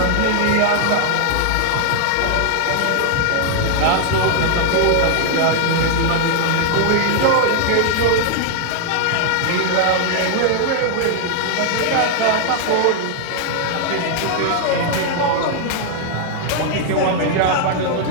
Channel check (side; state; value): both; different; correlation 0.00